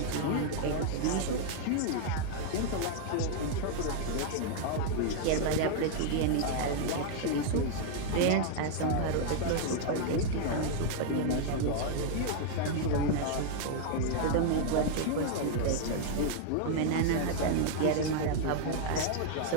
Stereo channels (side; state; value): both; different; correlation -0.01